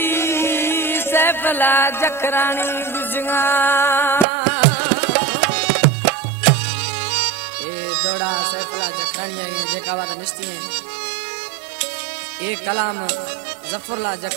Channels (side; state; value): left; drops out; at 4.2 s